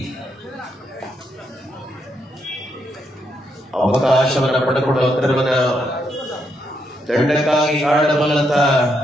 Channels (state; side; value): normal; both; correlation 0.79